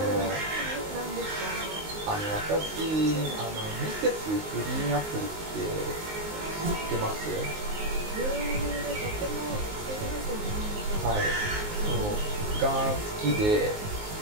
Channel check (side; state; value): left; late; 19 ms